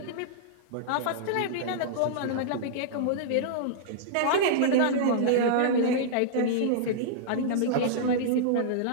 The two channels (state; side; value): different; both; correlation -0.02